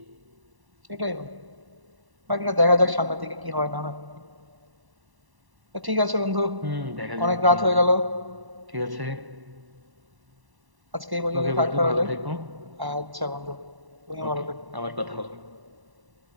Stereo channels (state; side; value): late; left; 1.1 ms